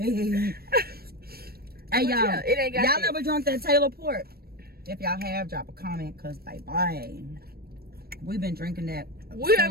Hey, y'all. Yeah, it ain't got y'all that. never drunk that Taylor port? If y'all have, drop a comment. Because, baby, we've been drinking that. We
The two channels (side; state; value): left; late; 0.45 ms